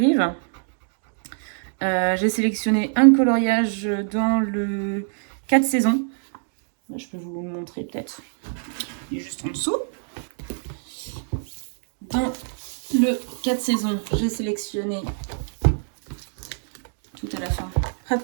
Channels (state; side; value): silent; left; digital silence